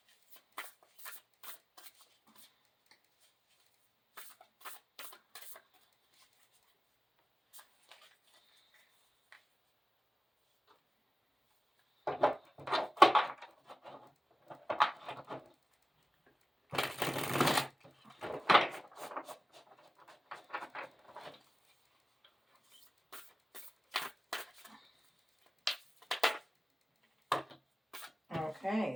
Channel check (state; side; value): normal; both; correlation 0.96